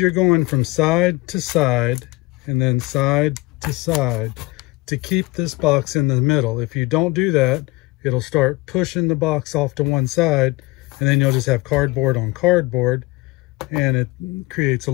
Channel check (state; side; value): quieter; right; 21.7 dB